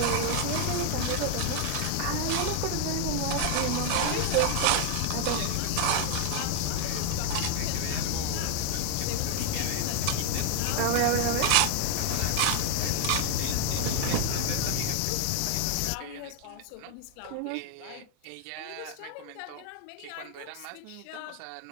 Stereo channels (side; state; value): both; different; correlation 0.00